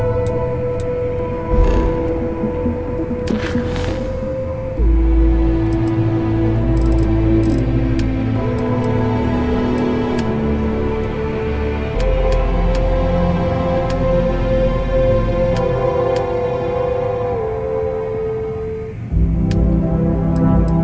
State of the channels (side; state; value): both; identical; correlation 1.00